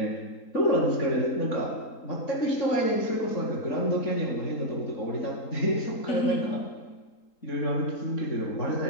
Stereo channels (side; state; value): right; late; 3.8 ms